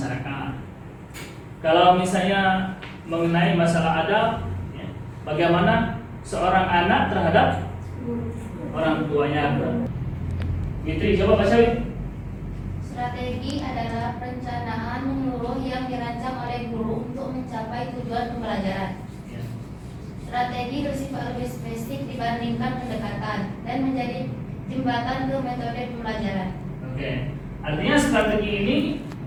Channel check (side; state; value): both; identical; correlation 1.00